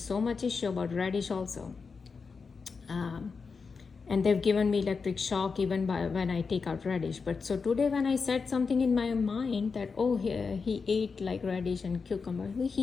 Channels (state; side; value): quieter; right; 5.0 dB